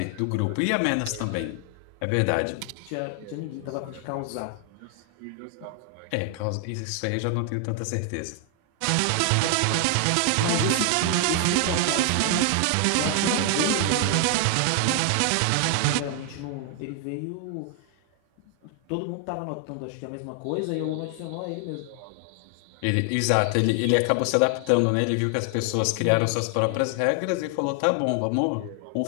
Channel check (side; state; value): both; different; correlation 0.00